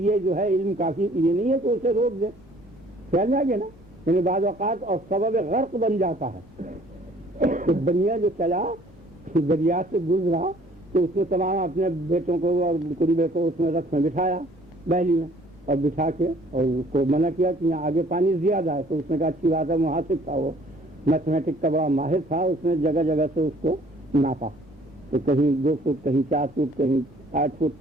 جو ہے علم کافی یہ نہیں ہے کہ اسے روک دے. خیال میں آ گیا نا. یعنی بعض اوقات اور سبب غرق بن جاتا ہے. تو بنیا جو چلا دریا سے گزرا تو اس نے تمام اپنے بیٹوں کو اور قریبے کو اس میں رکھ میں بٹھایا بہلی میں، اور بٹھا کے اور اس کو منع کیا کہ یہاں آگے پانی زیادہ ہے. تو اس نے کہا اچھی بات ہے، محاسب تھا، وہ میتھمیٹک کا بڑا ماہر تھا. اس نے جگہ جگہ سے اس کو ناپا، تو کہیں 2 فٹ، کہیں 4 فٹ، کہیں 8 فٹ.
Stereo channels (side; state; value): both; normal; correlation 0.57